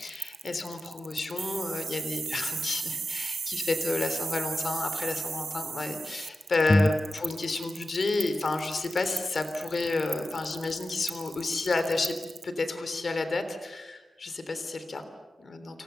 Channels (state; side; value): normal; both; correlation 0.92